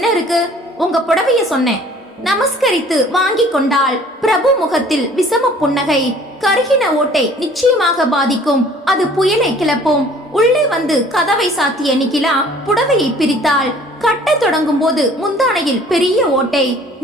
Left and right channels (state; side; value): normal; both; correlation 0.52